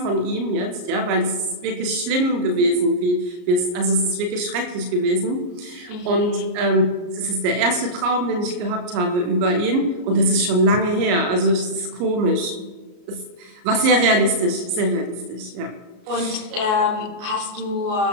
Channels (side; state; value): left; late; 34 ms